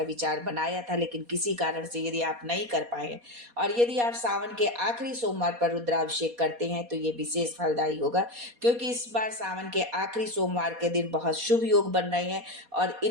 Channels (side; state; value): left; late; 4.2 ms